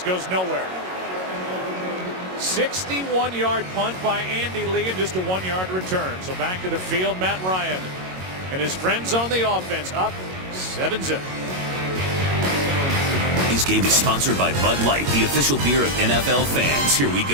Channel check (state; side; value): late; left; 22 ms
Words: nowhere. 61-yard punt by Andy Lee and just a 1-yard return. So back to the field, Matt Ryan and his friends on the offense, up 7-0. This game is sponsored by Bud Light, the official beer of NFL fans. Here we